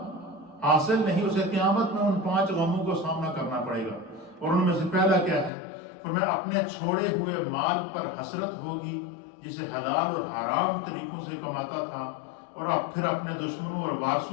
حاصل نہیں، اسے قیامت میں ان 5 غموں کو سامنا کرنا پڑے گا۔ اور ان میں سے پہلا کیا ہے؟ فرمایا اپنے چھوڑے ہوئے مال پر حسرت ہوگی، جسے حلال اور حرام طریقوں سے کماتا تھا، اور اب پھر اپنے دشمنوں اور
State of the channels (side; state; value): right; drops out; at 5.5 s